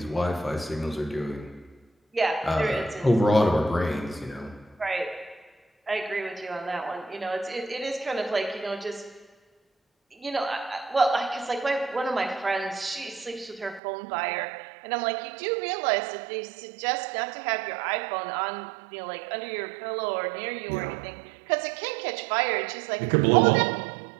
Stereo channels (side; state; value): left; drops out; at 13.8 s